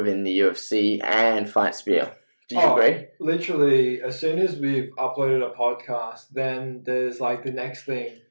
the UFC and Fight Spear. Do you agree? Literally, as soon as we've uploaded a podcast, then there's like the next thing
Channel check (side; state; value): both; inverted; correlation -1.00